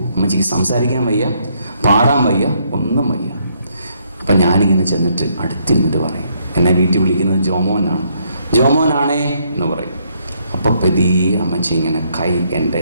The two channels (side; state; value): both; inverted; correlation -0.71